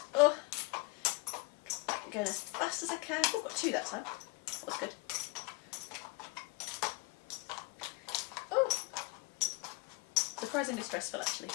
Oh, I'm going as fast as I can. Oh, got two that time. That was good. Oh, surprisingly stressful actually.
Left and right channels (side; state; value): right; quieter; 24.2 dB